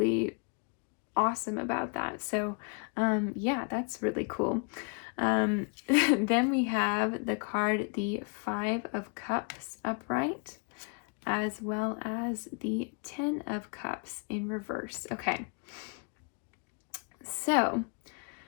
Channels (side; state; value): right; quieter; 36.8 dB